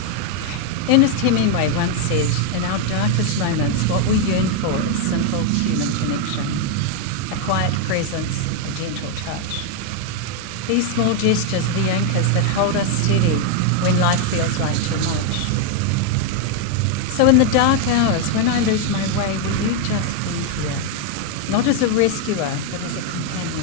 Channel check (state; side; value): different; both; correlation 0.01